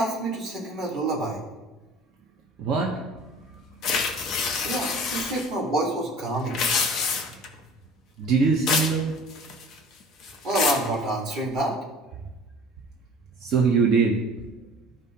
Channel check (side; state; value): both; normal; correlation 0.45